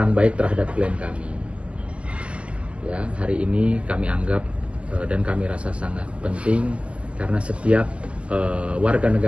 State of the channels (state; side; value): late; left; 0.061 ms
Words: baik terhadap klien kami. Ya, hari ini kami anggap dan kami rasa sangat penting karena setiap warga